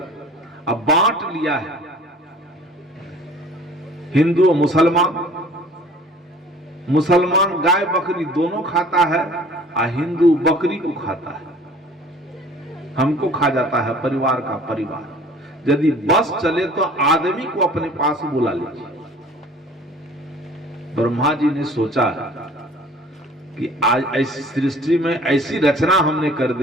अब बांट लिया है। हिंदू और मुसलमान गाय बकरी दोनों खाता है और हिंदू बकरी को खाता है, हमको खा जाता है परिवार का परिवार। यदि बस चले तो आदमी को अपने पास बुला लीजिए। ब्रह्मा जी ने सोचा कि आज ऐसी सृष्टि में ऐसी रचना हमने कर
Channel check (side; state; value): both; normal; correlation 0.49